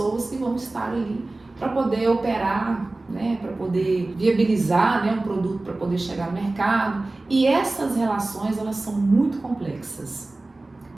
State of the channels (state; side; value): quieter; left; 3.0 dB